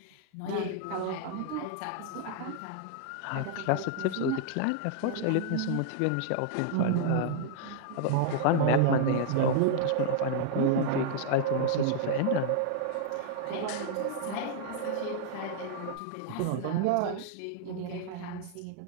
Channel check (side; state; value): both; different; correlation -0.01